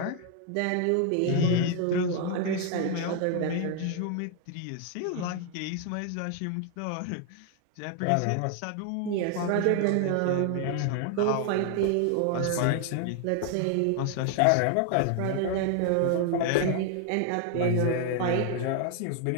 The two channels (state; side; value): different; both; correlation 0.00